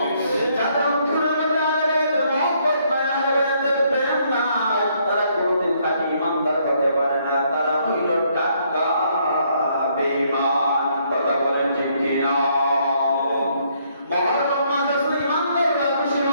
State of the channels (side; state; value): both; inverted; correlation -0.70